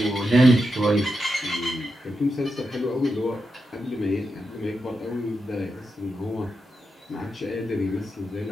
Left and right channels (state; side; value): normal; both; correlation 0.87